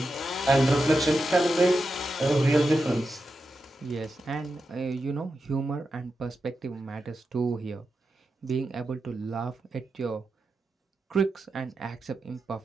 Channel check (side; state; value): both; normal; correlation 0.89